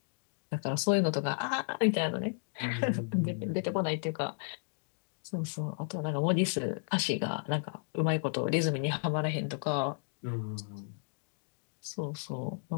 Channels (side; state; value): right; silent; digital silence